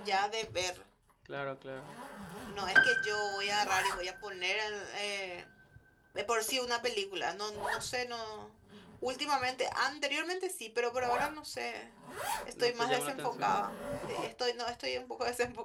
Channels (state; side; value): identical; both; correlation 1.00